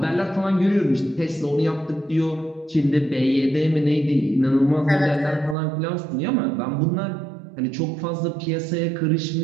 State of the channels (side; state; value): left; drops out; at 5.6 s